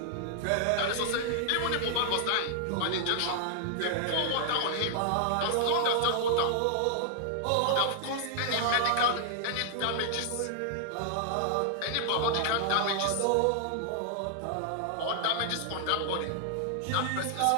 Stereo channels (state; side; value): different; both; correlation 0.00